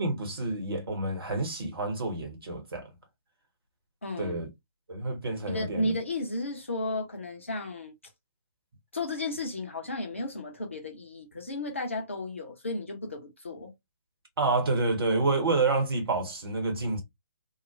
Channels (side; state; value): both; inverted; correlation -0.53